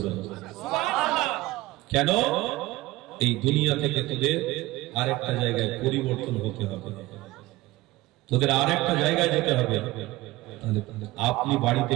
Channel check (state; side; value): quieter; left; 18.7 dB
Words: দেব। সুবহানাল্লাহ। কেন? এই দুনিয়া থেকে তোদের আরেকটা জায়গায় পরিবর্তন হতে হবে, তোদের আরেকটা জায়গায় যেতে হবে। তাহলে আপনি বাড়িতে